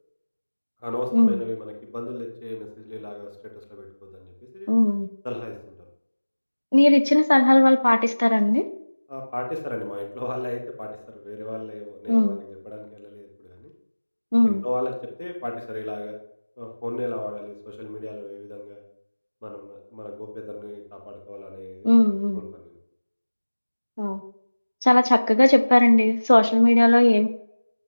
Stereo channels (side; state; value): both; inverted; correlation -1.00